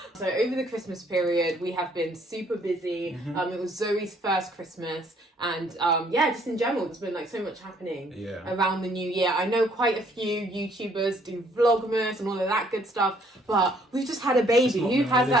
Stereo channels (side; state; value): both; normal; correlation 0.64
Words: So over the Christmas period, we have been super busy. It was Zoe's first Christmas, and just in general, there's been so much happening around the new year. I know quite a few YouTubers do Vlogmas and all of that good stuff, but we've just had a baby. Who has